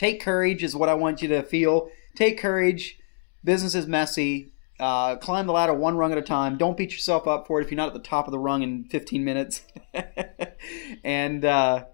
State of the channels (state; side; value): silent; right; digital silence